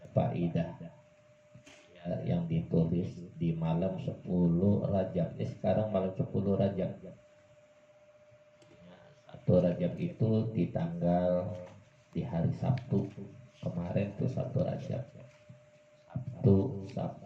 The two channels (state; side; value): identical; both; correlation 1.00